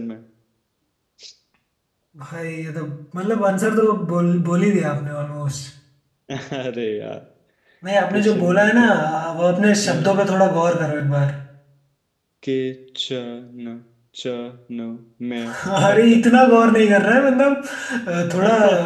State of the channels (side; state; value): both; identical; correlation 1.00